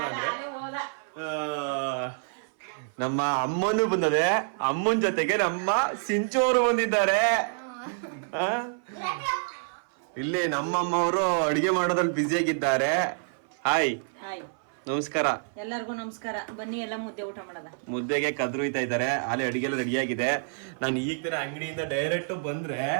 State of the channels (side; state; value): left; silent; 56 dB below the other